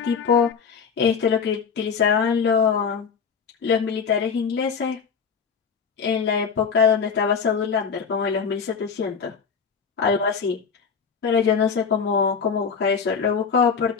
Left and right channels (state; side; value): quieter; right; 6.1 dB